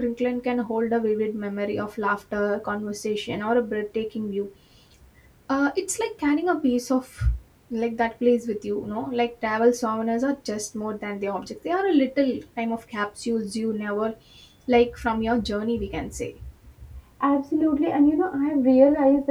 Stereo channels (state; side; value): identical; both; correlation 1.00